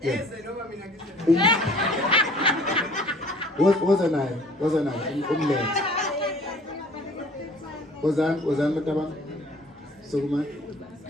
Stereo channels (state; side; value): normal; both; correlation 0.52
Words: eze noma mina ngize woza naye umlethe wozani mataba sokuma